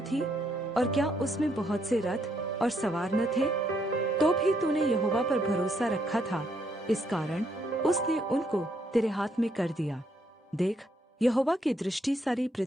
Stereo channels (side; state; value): both; normal; correlation 0.73